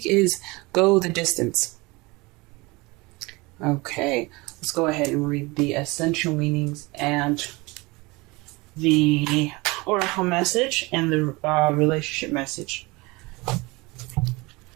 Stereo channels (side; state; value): left; quieter; 24.2 dB